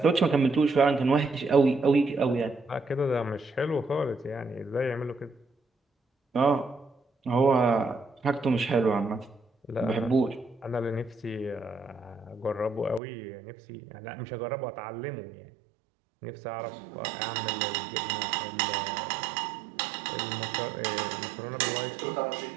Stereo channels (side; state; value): left; drops out; at 13.0 s